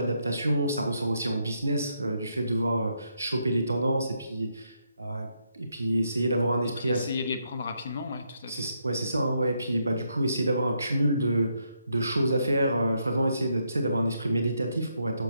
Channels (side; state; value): both; inverted; correlation -0.77